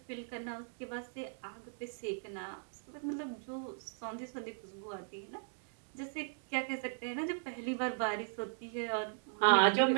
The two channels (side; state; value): left; silent; digital silence